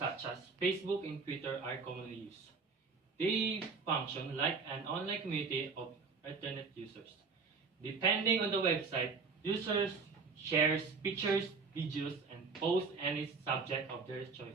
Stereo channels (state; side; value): quieter; left; 4.8 dB